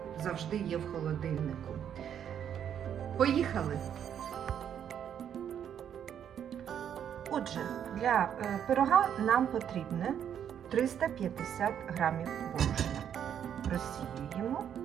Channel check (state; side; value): quieter; left; 9.0 dB